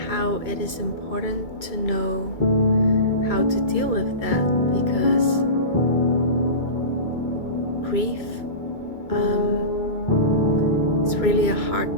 how it is important to know how to deal with that because grief is really a hard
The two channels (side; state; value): right; late; 2.1 ms